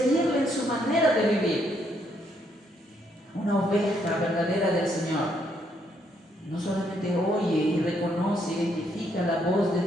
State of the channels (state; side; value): normal; both; correlation 0.73